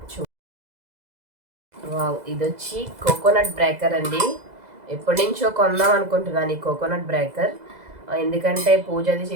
ఇది వచ్చి కోకోనట్ బ్రేకర్ అండి. ఎప్పటి నుంచో కొందాం అనుకుంటున్నాను ఈ కోకోనట్ బ్రేకర్. ఎందుకంటే పూజ అది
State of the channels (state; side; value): late; left; 2.0 ms